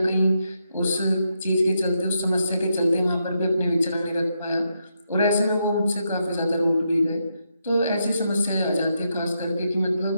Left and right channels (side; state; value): both; inverted; correlation -0.81